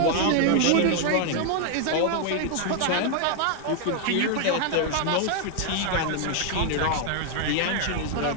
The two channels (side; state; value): both; different; correlation 0.00